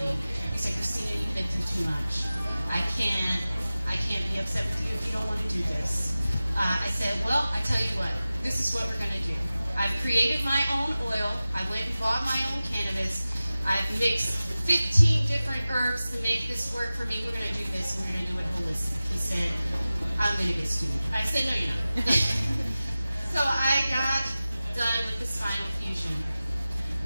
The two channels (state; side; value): inverted; both; correlation -0.96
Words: He said, Christina, you've been through too much. I can't be upset with you if you don't want to do this. I said, well, I tell you what, this is what we're going to do. I've created my own oil. I went and bought my own cannabis. I've mixed 15 different herbs to make this work for me. We're going to do this, and we're going to do it holistic. He said, I'm going to get stupid. I said, no, you're not. So I got done with the spinal fusion.